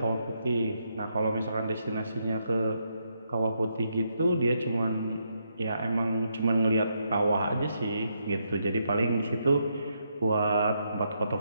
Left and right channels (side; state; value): both; inverted; correlation -0.78